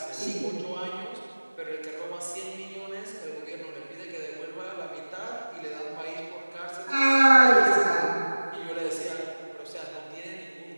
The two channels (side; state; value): both; inverted; correlation -1.00